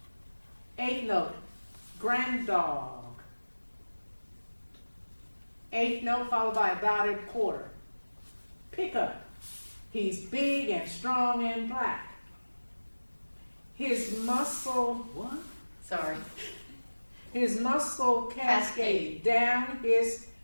8th note, granddog. 8th note followed by a dotted quarter. Pickup. He's big and strong and black. His muscle, what? Sorry. His muscle cascade down his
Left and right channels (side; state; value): both; inverted; correlation -1.00